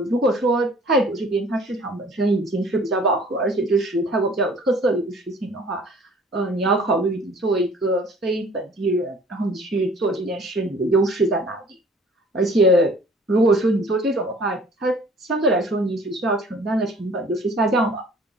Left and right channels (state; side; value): normal; both; correlation 0.52